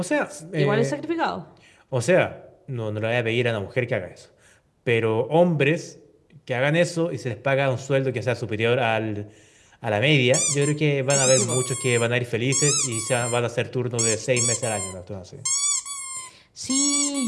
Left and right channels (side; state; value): both; identical; correlation 1.00